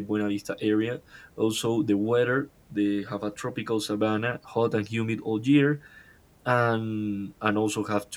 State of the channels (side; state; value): both; identical; correlation 1.00